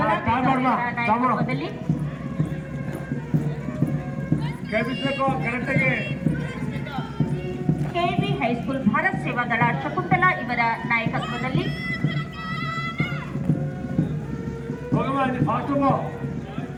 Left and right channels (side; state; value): both; identical; correlation 1.00